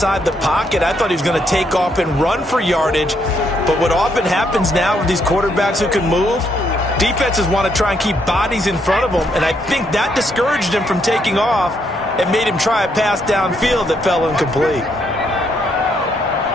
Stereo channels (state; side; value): normal; both; correlation 0.74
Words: the pocket, I thought he was going to take off and run for yardage. But what often happens now with these quarterbacks who can move, defenses want to try and keep bodies in front of them, and I think that discouraged him from taking off and made him try a pass downfield that fell incomplete.